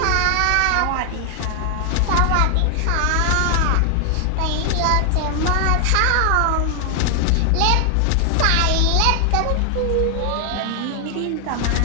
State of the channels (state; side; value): different; both; correlation 0.00